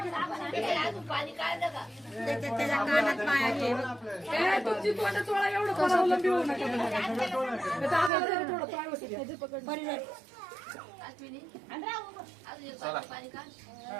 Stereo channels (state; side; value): drops out; left; at 8.1 s